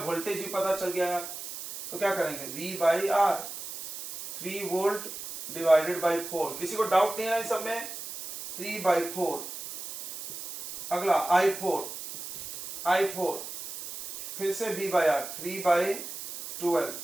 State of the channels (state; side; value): noise; right; hiss, 9 dB below the sound